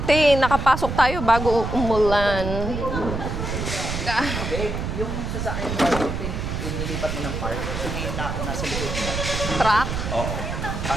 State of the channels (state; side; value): noise; right; rumble, 4 dB below the sound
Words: nakapasok tayo bago umulan. Babe, yung sasakyan ba, yung nilipat mo ng park, kasi may nasa likod mo. Truck? Oo.